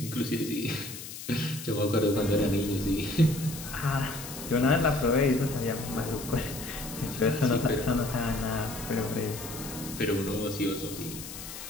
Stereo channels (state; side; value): noise; left; hiss, 11 dB below the sound